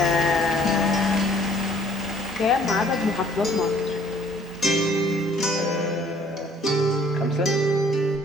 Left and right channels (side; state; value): both; normal; correlation 0.58